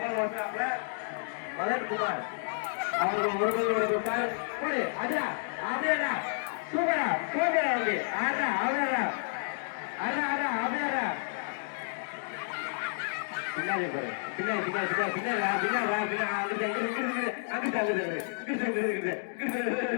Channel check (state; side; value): silent; right; digital silence